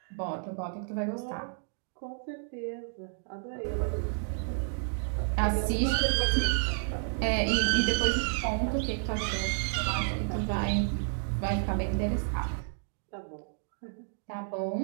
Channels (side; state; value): left; silent; digital silence